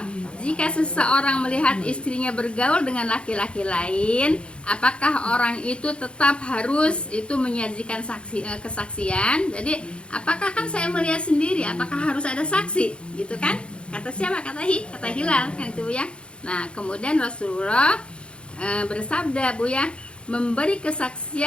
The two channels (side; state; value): right; late; 0.057 ms